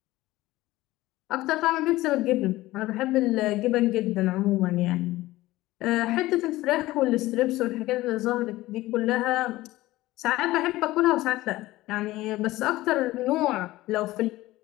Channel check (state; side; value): quieter; right; 17.6 dB